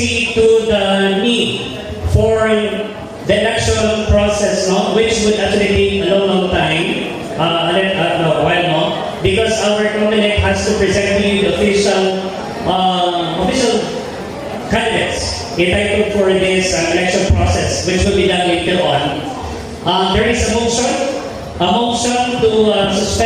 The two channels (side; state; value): both; identical; correlation 1.00